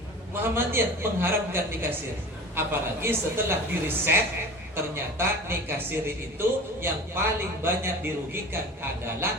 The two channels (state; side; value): normal; both; correlation 0.38